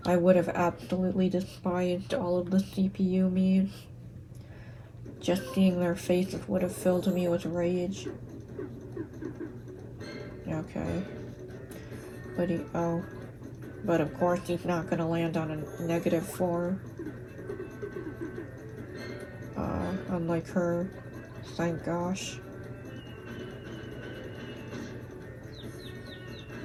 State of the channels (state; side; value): identical; both; correlation 1.00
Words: I would have absolutely despised all of the CPU memes. Just seeing their faces would have filled me with rage. Okay. But of course he's not gonna land on a -4. Unlike her. Thank gosh.